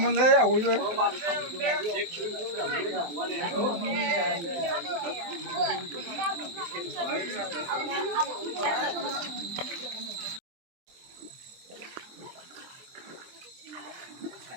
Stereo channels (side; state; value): left; late; 23 ms